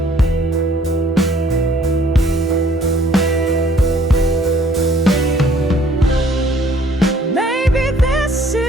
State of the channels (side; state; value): both; normal; correlation 0.59